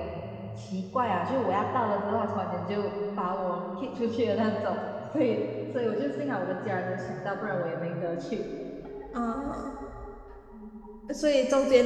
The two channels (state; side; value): identical; both; correlation 1.00